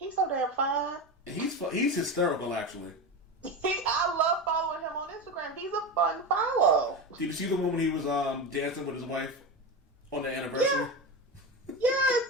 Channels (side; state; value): both; normal; correlation 0.21